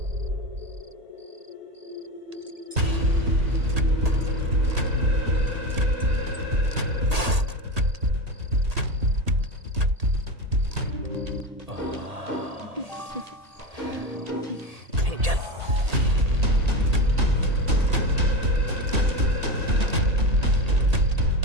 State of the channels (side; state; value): left; late; 1.7 ms